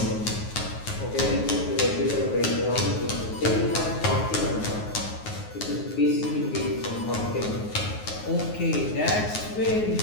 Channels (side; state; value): right; late; 9.5 ms